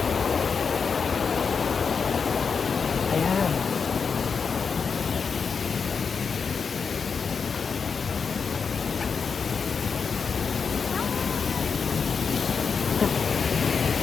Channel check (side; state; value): right; quieter; 5.7 dB